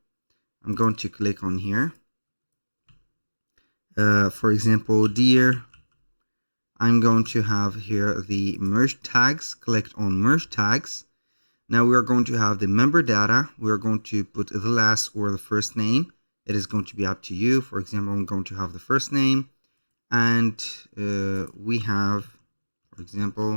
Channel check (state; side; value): inverted; both; correlation -1.00